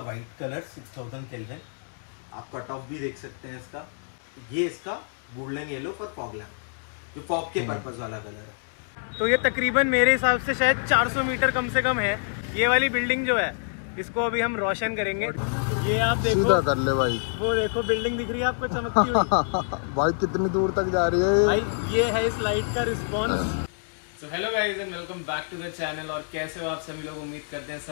कलर 6000 केल्विन। आप कट ऑफ भी देख सकते हैं इसका। ये इसका golden yellow for fog lamp, जो फॉग के पर्पस वाला कलर है। तो ये तकरीबन मेरे हिसाब से शायद 400 मीटर कम से कम है। ये वाली बिल्डिंग जो है इसको अभी हम रोशन करेंगे। ये आप देखो, सीधा कर ले भाई। वो देखो बिल्डिंग दिख रही है आपको चमकती हुई। भाई कितनी दूर तक जा रही है भाई ये है इस लाइट का response. So hello guys and welcome back to the channel. और कैसे हो आप सभी लोग, उम्मीद करते हैं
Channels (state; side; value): silent; right; digital silence